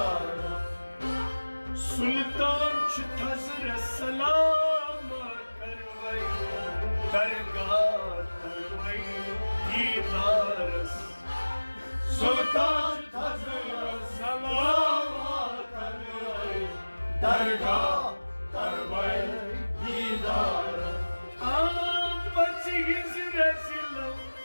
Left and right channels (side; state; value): both; inverted; correlation -1.00